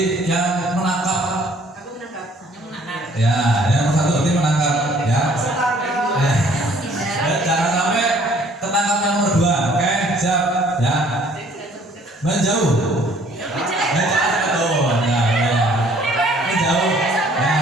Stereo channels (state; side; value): normal; both; correlation 0.58